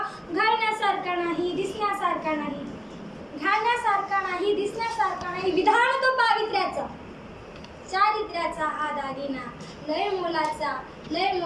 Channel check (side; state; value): both; identical; correlation 1.00